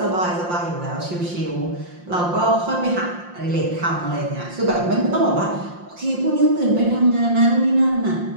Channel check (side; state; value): left; late; 5.7 ms